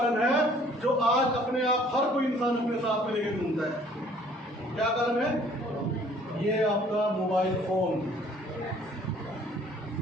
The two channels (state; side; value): normal; both; correlation 0.56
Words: है जो आज अपने आप हर कोई इंसान अपने साथ में लेके घूमता है। क्या कारण है? ये आपका मोबाइल फोन।